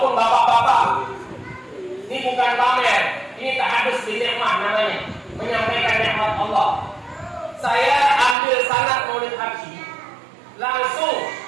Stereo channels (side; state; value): left; drops out; at 8.3 s